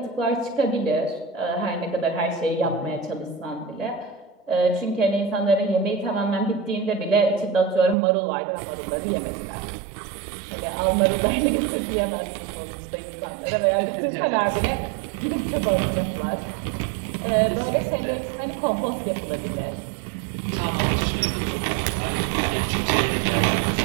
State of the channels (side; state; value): left; drops out; at 8.0 s